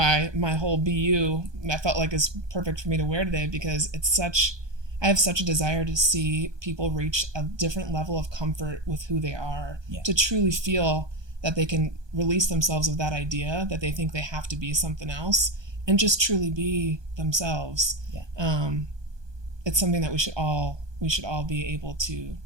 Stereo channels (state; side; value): late; left; 1.2 ms